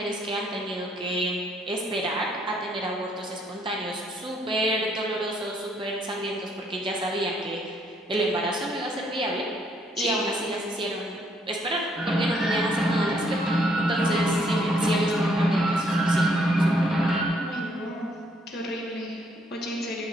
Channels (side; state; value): both; normal; correlation 0.69